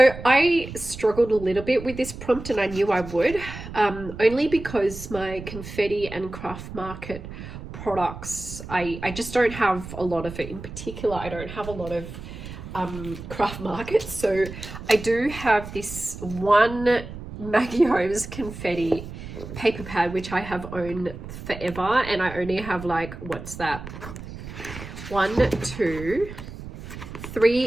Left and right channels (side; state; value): right; noise; rumble, 11 dB below the sound